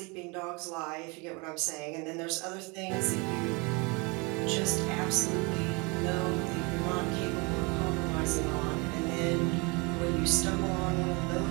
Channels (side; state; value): left; quieter; 28.8 dB